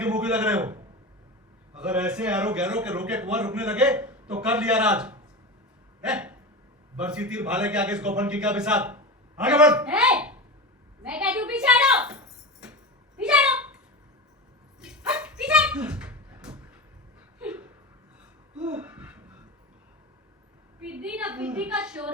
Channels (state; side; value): normal; both; correlation 0.24